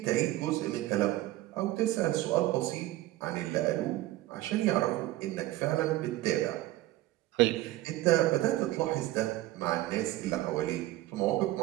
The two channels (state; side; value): quieter; left; 16.4 dB